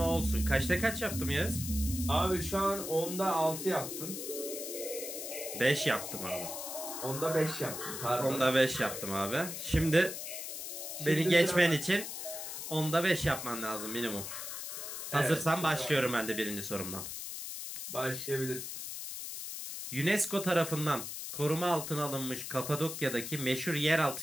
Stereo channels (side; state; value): left; noise; hiss, 7 dB below the sound